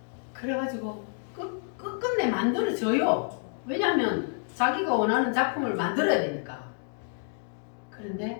그래가지고 끝끝내 만들어져요. 왜냐하면 자기가 원하는 작품을 만들어야 되니까.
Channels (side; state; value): right; silent; 59 dB below the other